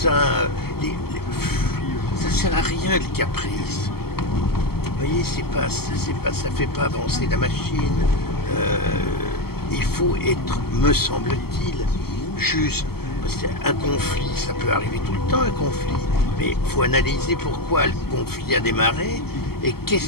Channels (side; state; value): right; late; 0.95 ms